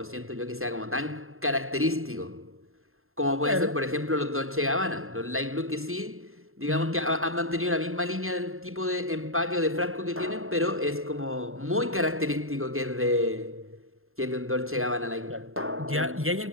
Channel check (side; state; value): left; late; 0.61 ms